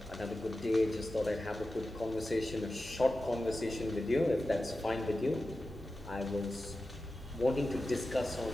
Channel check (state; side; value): normal; both; correlation 0.93